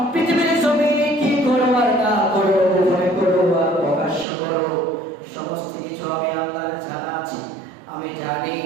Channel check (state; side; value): drops out; left; at 4.2 s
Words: পৃথিবীর জমিনে কি করো আর না করো, গোপনে করো আর প্রকাশ্য করো, সমস্ত কিছু আমি আল্লাহর জানা আছে, আমি জানি,